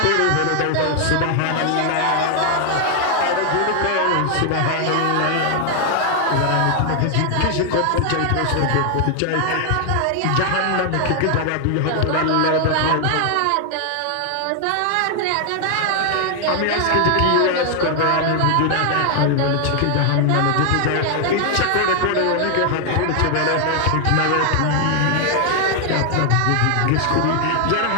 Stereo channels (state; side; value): different; both; correlation 0.00